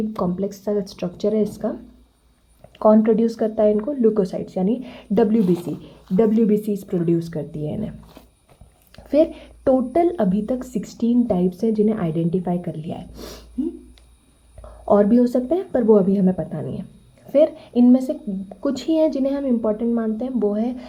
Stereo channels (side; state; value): both; identical; correlation 1.00